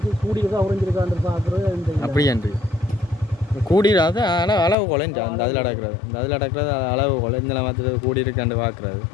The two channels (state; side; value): drops out; right; at 4.8 s